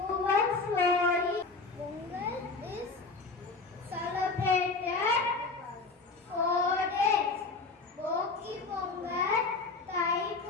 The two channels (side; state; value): right; quieter; 4.0 dB